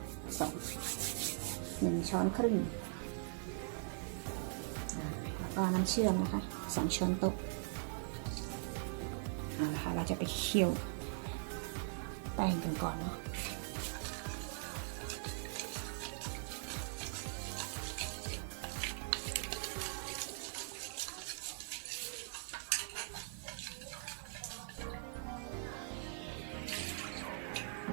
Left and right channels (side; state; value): left; silent; digital silence